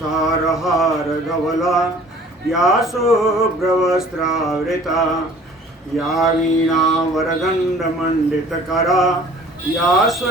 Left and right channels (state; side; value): normal; both; correlation 0.50